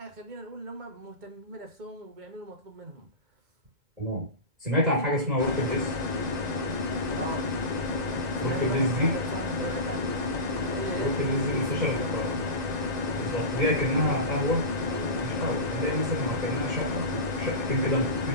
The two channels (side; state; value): left; late; 1.9 ms